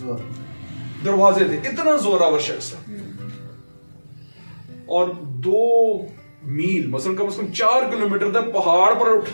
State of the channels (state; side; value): inverted; both; correlation -1.00